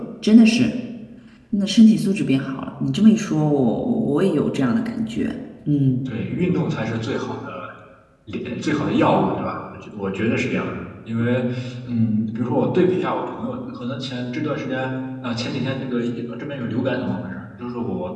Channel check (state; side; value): identical; both; correlation 1.00